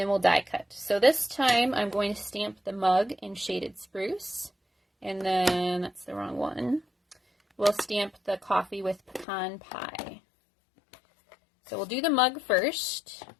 we'll die cut. So this time I'm going to stamp the mug in shaded spruce, and then that's the wrong one. We'll stamp the coffee with pecan pie. So we'll do the mug first.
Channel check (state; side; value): drops out; right; at 9.2 s